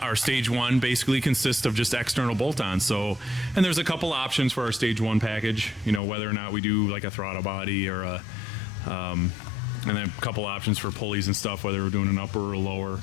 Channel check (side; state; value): right; drops out; at 6.0 s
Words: our stage 1 basically consists of just external bolt-ons. So, and there's a couple options for our stage 1 package, you know, whether or not we do like a throttle body or a and then a couple options for pulleys and stuff, whether we're doing an upper or a lower.